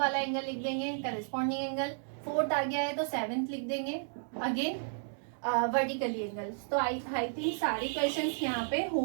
एंगल लिख देंगे, करस्पॉन्डिंग एंगल. 4th आ गया है तो 7th लिख देंगे, अगेन वर्टिकली एंगल्स. तो आई थिंक सारे क्वेश्चंस यहाँ पे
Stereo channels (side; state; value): left; silent; digital silence